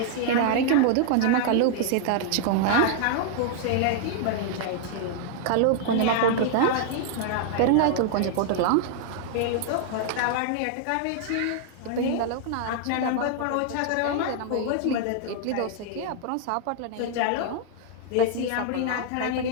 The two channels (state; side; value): different; both; correlation -0.01